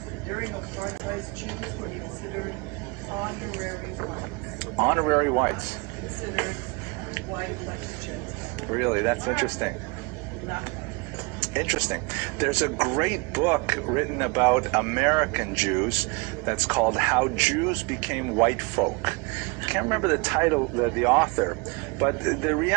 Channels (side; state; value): left; quieter; 27.8 dB